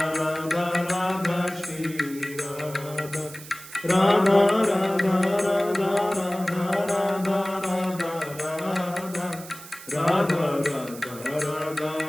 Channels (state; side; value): noise; right; hiss, 16 dB below the sound